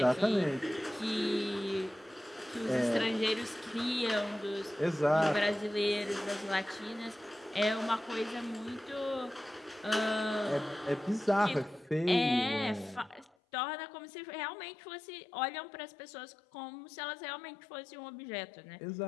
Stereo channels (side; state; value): right; drops out; at 13.3 s